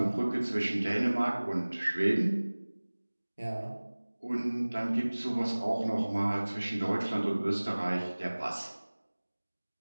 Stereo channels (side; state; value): both; inverted; correlation -1.00